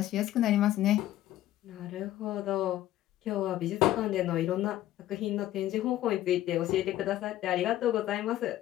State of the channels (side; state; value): right; quieter; 13.8 dB